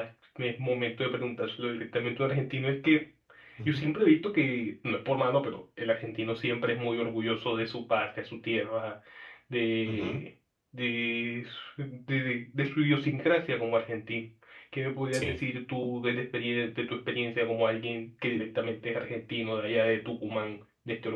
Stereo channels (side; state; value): both; identical; correlation 1.00